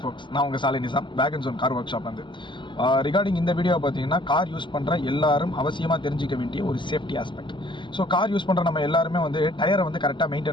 ஃபோக்ஸ், நான் உங்கள் சாலை நிசாம், பேக் அண்ட் ஜோன் கார் ஒர்க் ஷாப் வந்து ரிகார்டிங் இந்த வீடியோ பார்த்தீங்கன்னா கார் யூஸ் பண்ணுற எல்லாரும் அவசியமாக தெரிஞ்சிக்க வேண்டிய ஒரு safety aspect. So car use பண்ணுற நம்ம எல்லாருமே வந்து டயரை வந்து கரெக்டாக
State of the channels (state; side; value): late; right; 0.23 ms